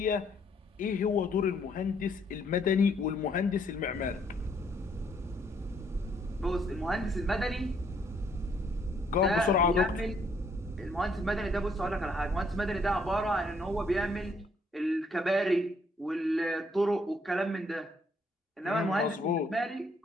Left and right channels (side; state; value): both; normal; correlation 0.68